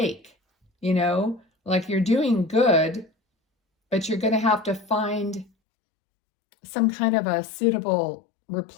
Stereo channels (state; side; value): drops out; right; at 5.5 s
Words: like you're doing good, but you're going to have to find some kind of a suitable